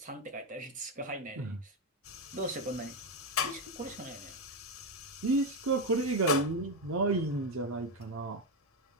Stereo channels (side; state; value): both; normal; correlation 0.09